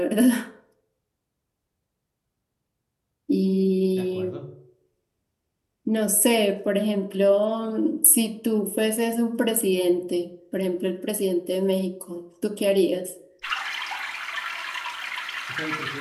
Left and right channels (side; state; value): both; identical; correlation 1.00